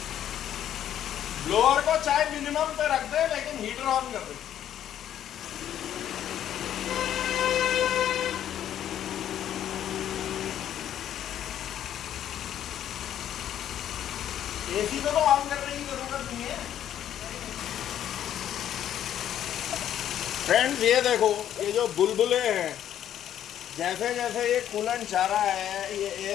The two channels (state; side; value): quieter; right; 10.7 dB